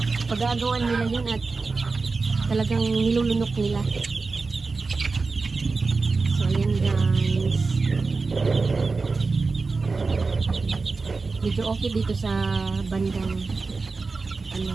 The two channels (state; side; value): quieter; left; 4.1 dB